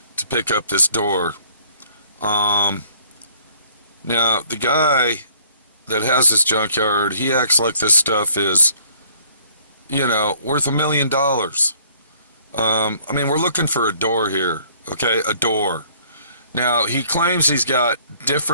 to pick up this door. Now, the guy that has this junkyard, he acts like this stuff is, you know, worth $1 million. I mean, we're looking for a door here, okay? A door. Now, he claims he's got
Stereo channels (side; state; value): both; inverted; correlation -0.58